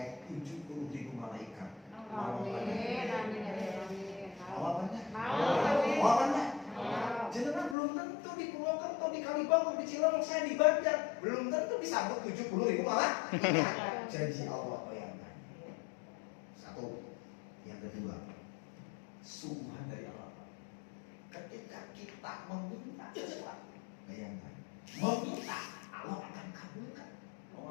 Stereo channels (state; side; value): drops out; right; at 7.8 s